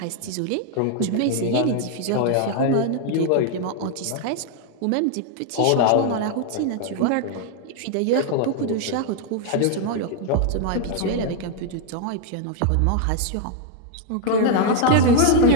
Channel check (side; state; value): both; different; correlation 0.00